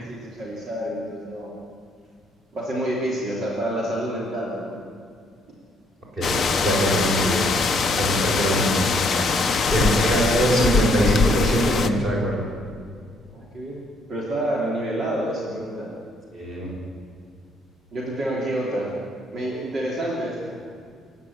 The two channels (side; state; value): both; normal; correlation 0.68